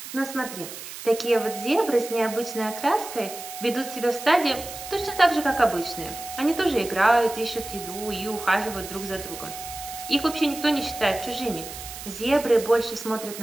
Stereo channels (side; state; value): right; noise; hiss, 11 dB below the sound